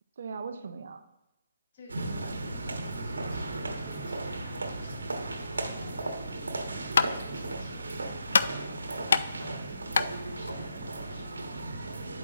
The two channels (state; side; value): inverted; both; correlation -0.83